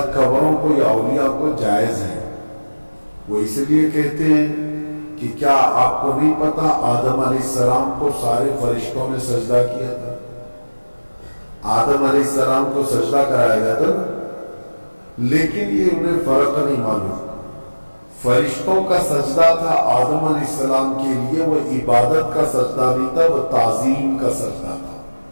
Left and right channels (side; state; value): both; inverted; correlation -1.00